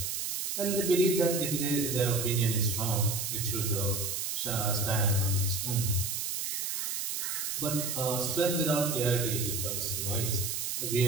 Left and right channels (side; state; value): right; noise; hiss, 2 dB below the sound